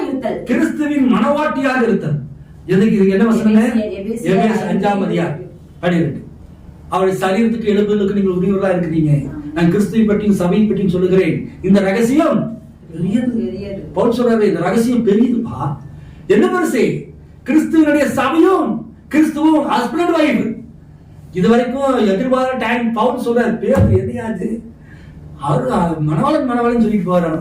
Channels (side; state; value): both; identical; correlation 1.00